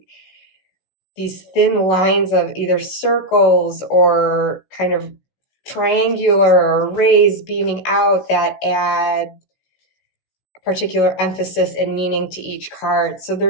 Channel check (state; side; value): late; right; 16 ms